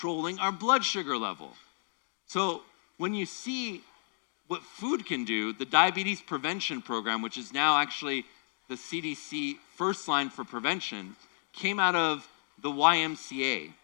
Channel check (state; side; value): silent; right; digital silence